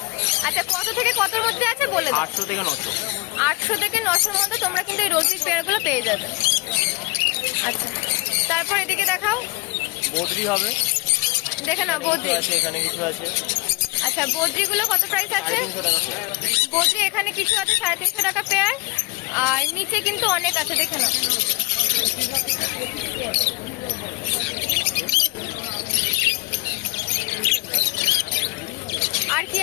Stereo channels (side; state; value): right; quieter; 25.0 dB